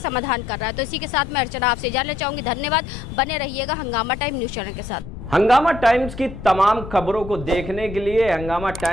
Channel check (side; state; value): left; noise; rumble, 11 dB below the sound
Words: कर रहा है। तो इसी के साथ मैं अर्चना आपसे जानना चाहूंगी। धन्यवाद, बने रहिएगा हंगामा टाइम न्यूज चैनल के साथ। हंगामा टाइम्स की तमाम खबरों को देखने के लिए हंगामा